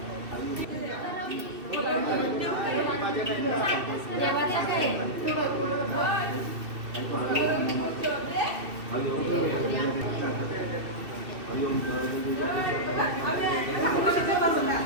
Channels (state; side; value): late; left; 2.6 ms